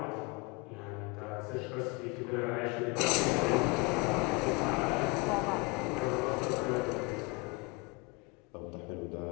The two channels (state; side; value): quieter; right; 25.9 dB